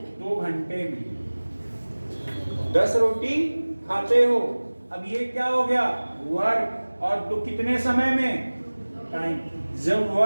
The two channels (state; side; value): inverted; both; correlation -1.00